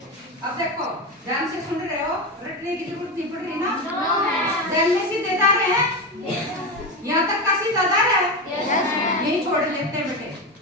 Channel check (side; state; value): both; normal; correlation 0.18